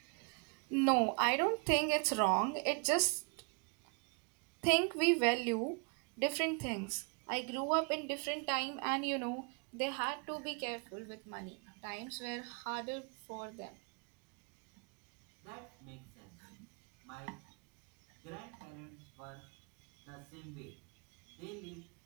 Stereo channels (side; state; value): left; quieter; 35.0 dB